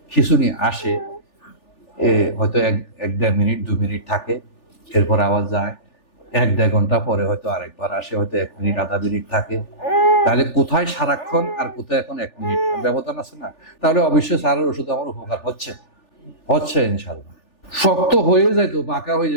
খিঁচুনি আসে, হয়তো 1-1.5 মিনিট 2 মিনিট থাকে, এরপর আবার যায়। 1-1.5 ঘন্টা পরে হয়তো আরেকবার আসে, হয়তো 1 মিনিট আধা মিনিট থাকে। তাহলে কোথায় সারাক্ষণ আর কোথায় এখন 1 মিনিট ব্যবধান আছে না? তাহলে অবশ্যই স্যারের ওষুধ আমার উপকার হচ্ছে ইনশাল্লাহ। শক্ত হয়ে যাইতো, বাঁকা হয়ে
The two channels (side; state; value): right; late; 3.4 ms